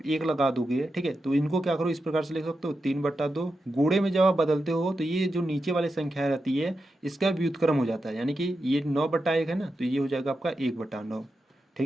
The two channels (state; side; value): normal; both; correlation 0.89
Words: एक लगा दोगे, ठीक है, तो इनको क्या करो इस प्रकार से लिख सकते हो 3/2। गुणे में जब आप बदलते हो तो ये जो नीचे वाली संख्या रहती है इसका व्युत्क्रम हो जाता है, यानी कि ये 9/1 है ना, तो ये हो जाएगा आपका 1/9।